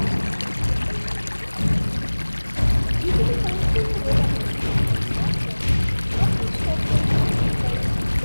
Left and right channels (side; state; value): both; inverted; correlation -1.00